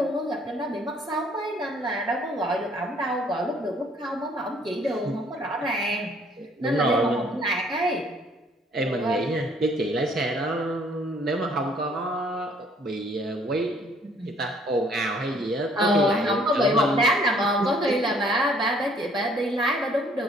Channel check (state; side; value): normal; both; correlation 0.61